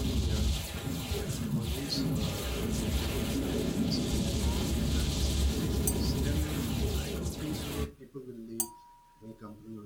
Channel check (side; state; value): both; identical; correlation 1.00